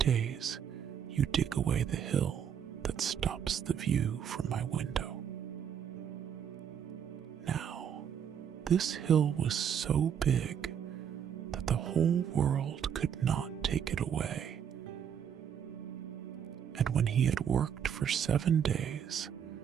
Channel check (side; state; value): left; quieter; 8.4 dB